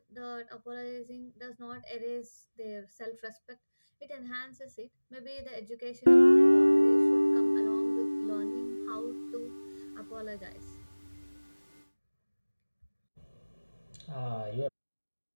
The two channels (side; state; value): both; inverted; correlation -1.00